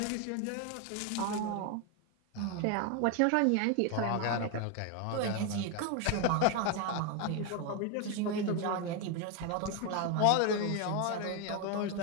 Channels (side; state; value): both; different; correlation 0.01